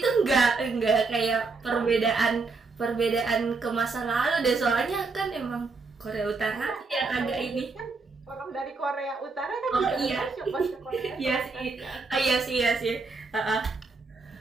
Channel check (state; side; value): quieter; left; 4.1 dB